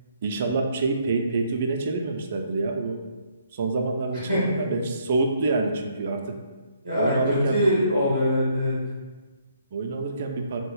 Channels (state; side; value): inverted; both; correlation -0.69